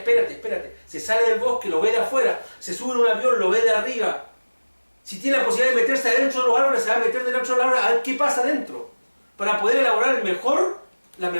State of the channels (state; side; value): inverted; both; correlation -1.00